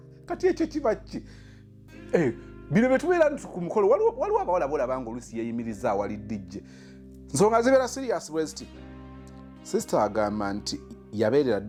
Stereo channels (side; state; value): both; identical; correlation 1.00